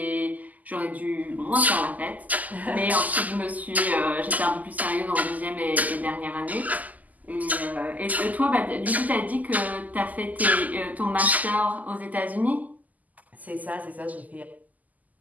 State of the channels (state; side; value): late; left; 0.079 ms